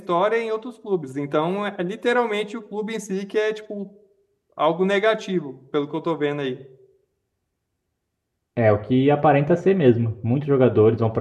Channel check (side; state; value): both; identical; correlation 1.00